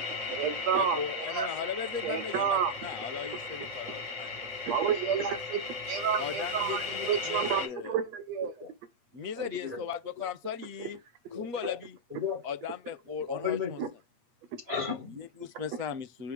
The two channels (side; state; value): left; late; 8.4 ms